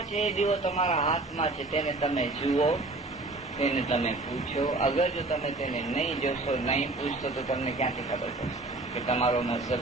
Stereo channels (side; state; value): left; quieter; 3.0 dB